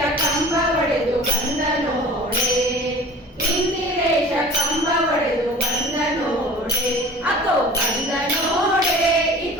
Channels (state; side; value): normal; both; correlation 0.42